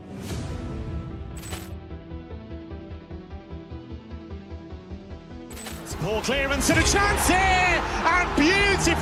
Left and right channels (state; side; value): identical; both; correlation 1.00